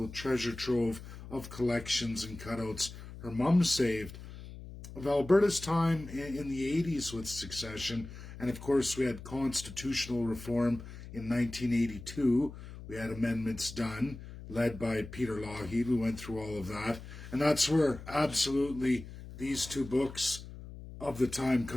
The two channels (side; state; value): left; noise; hum, 13 dB below the sound